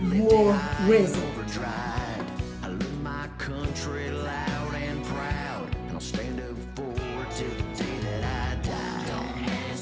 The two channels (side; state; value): both; identical; correlation 1.00